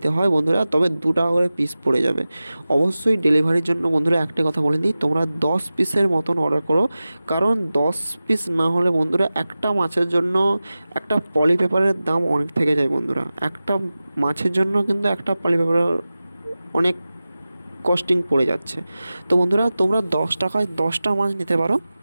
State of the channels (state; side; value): inverted; both; correlation -0.96